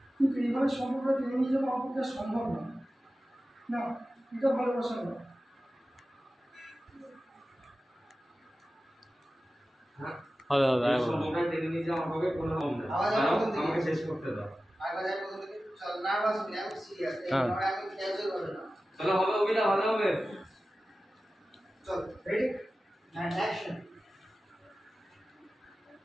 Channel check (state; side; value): normal; both; correlation 0.95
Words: কিন্তু এইভাবে সম্পর্কটা টেনে নিয়ে যাবো আমার পক্ষে আর সম্ভব নয়। না, এটা ভালোবাসা নয়। সম্পর্কটা টেনে নিয়ে যাওয়া আমাকে কোনো আমাকে শেষ করতে দাও। চলো হবে অভিনয় ভালো হবে। চল রেডি অ্যান্ড অ্যাকশন।